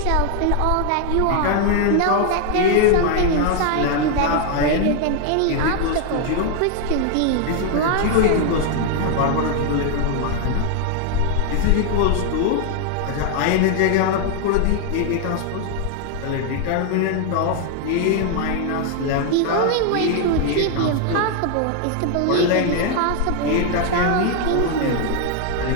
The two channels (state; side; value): different; both; correlation 0.00